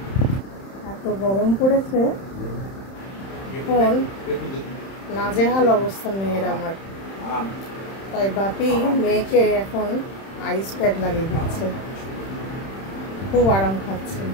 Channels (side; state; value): right; late; 31 ms